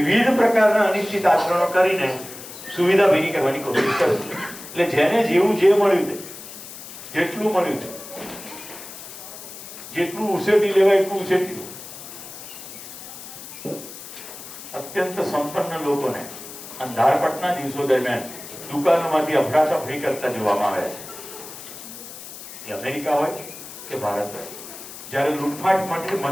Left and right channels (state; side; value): noise; left; hiss, 13 dB below the sound